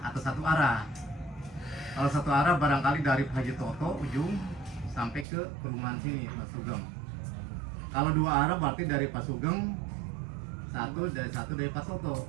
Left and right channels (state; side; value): drops out; left; at 5.2 s